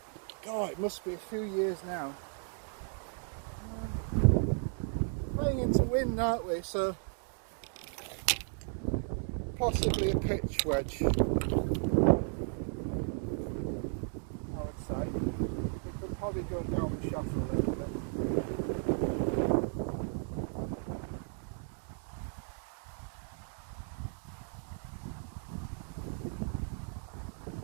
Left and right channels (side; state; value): left; silent; 55 dB below the other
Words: God, it must be a few years now. Playing into wind, aren't we? So possibly a pitch wedge, I would say. We could probably go down the shaft a little bit.